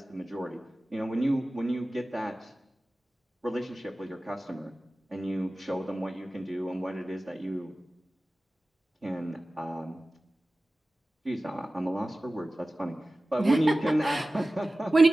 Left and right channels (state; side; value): normal; both; correlation 0.96